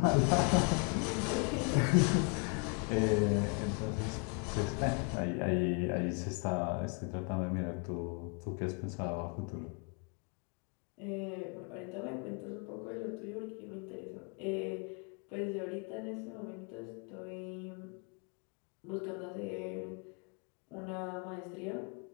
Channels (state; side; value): quieter; right; 36.9 dB